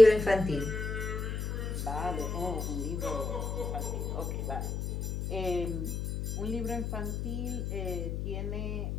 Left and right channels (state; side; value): noise; left; hum, 3 dB below the sound